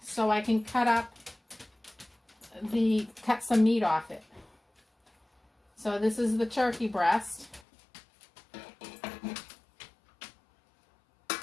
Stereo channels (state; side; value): drops out; right; at 7.6 s